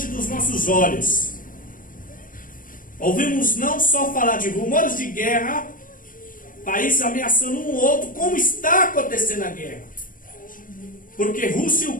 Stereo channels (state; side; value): late; right; 0.40 ms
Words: dos nossos olhos. Ouvimos não só falar de rumores de guerra, países ameaçando um outro, como está acontecendo a guerra. Porque Rússia e